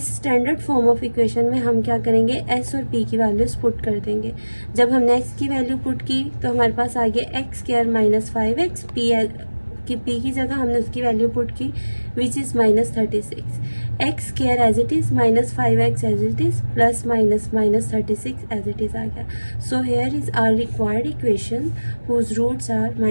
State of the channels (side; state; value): both; inverted; correlation -1.00